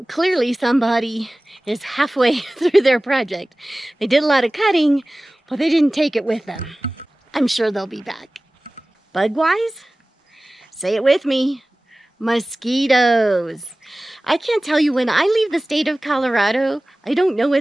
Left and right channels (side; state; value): both; normal; correlation 0.98